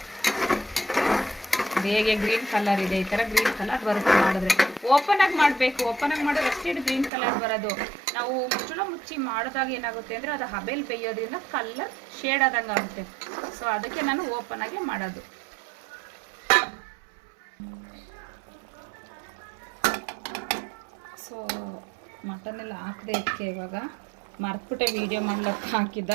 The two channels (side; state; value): left; drops out; at 7.1 s